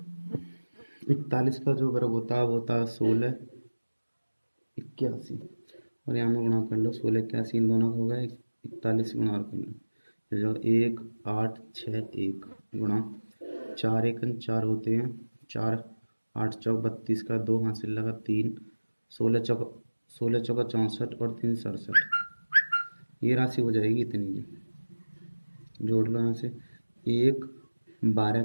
41 का जो वर्ग होता है वो होता है 1681, और यहाँ में गुणा कर लो 1681, इन दोनों का होगा 41 गुणा कर लो, तो जो 1861 गुणा 4 एकन 4 होते हैं, 4 8 चौक 32 का 2 हासिल लगा 3, 16 चौका 64 और 3 67, ये राशि हो जाएगी इतनी की। जोड़ लो यहाँ से, 1 12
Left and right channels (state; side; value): inverted; both; correlation -1.00